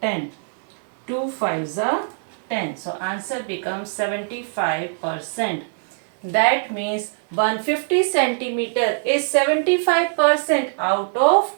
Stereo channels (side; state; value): left; silent; digital silence